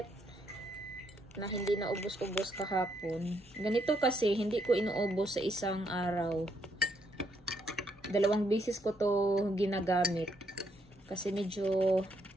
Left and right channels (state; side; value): noise; right; rumble, 29 dB below the sound